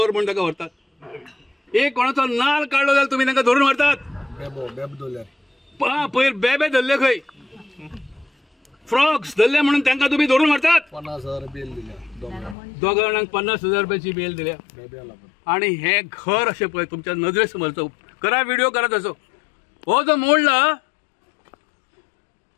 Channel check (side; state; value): right; drops out; at 12.6 s